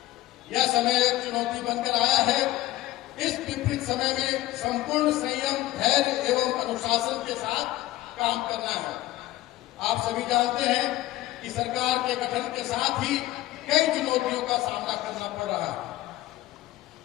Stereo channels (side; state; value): right; quieter; 16.4 dB